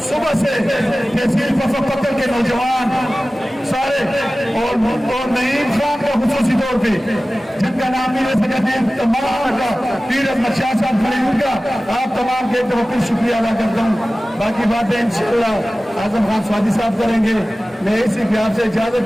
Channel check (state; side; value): normal; both; correlation 0.97